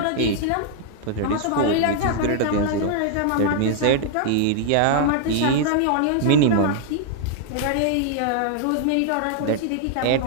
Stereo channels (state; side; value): different; both; correlation 0.00